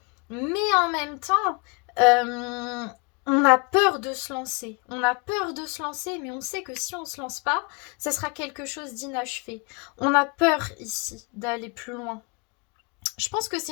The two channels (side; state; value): right; quieter; 30.9 dB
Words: Mais en même temps, on a peur de se lancer. On a peur de se lancer, mais on sait que si on ne se lance pas, ça sera quelque chose d'inachevé. On a peur ici d'aller plus loin. Je pense que